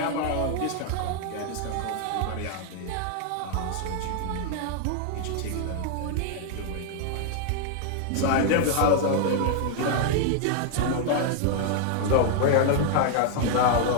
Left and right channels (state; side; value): different; both; correlation 0.00